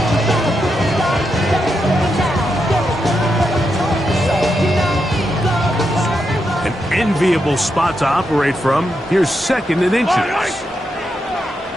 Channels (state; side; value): normal; both; correlation 0.84